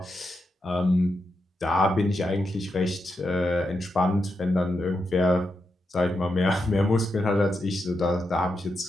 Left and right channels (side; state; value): both; normal; correlation 0.85